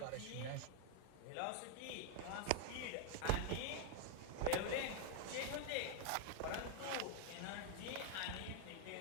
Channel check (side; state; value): both; different; correlation 0.00